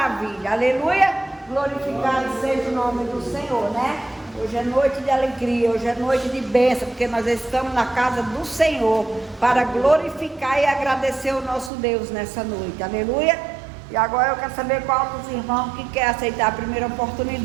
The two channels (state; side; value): drops out; left; at 11.7 s